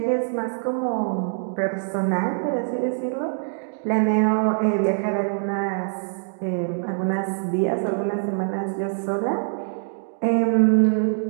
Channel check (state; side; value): silent; left; digital silence